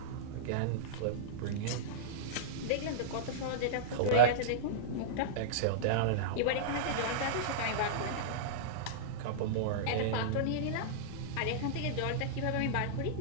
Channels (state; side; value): different; both; correlation -0.03